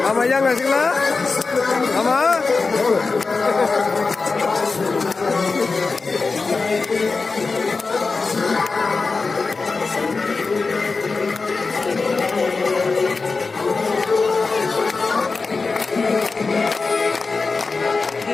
Ama yang ngasih lah, ama.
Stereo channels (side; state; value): right; quieter; 4.2 dB